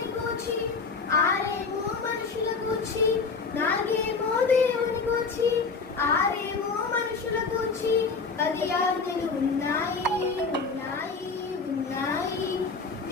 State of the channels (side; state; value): right; quieter; 4.6 dB